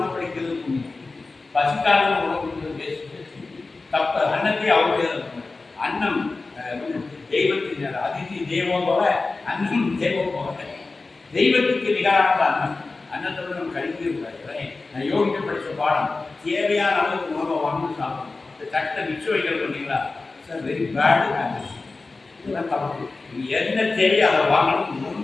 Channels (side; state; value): right; quieter; 3.7 dB